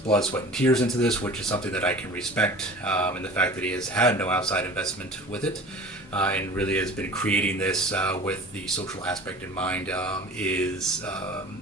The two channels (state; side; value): normal; both; correlation 0.41